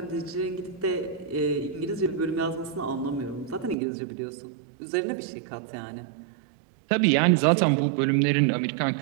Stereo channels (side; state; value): left; drops out; at 3.8 s